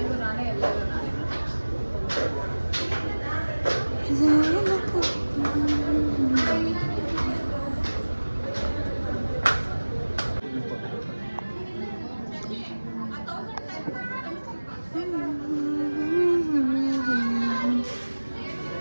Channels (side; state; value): both; inverted; correlation -1.00